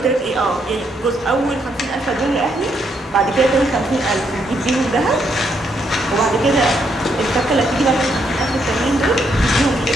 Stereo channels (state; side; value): normal; both; correlation 0.75